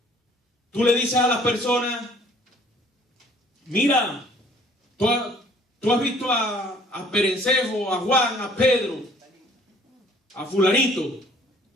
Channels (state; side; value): normal; both; correlation 0.56